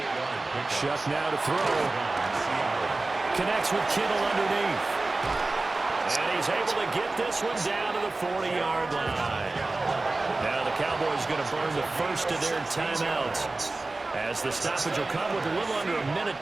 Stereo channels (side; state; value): left; quieter; 3.2 dB